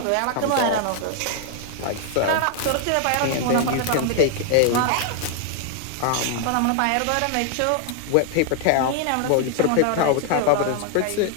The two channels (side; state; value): both; different; correlation 0.00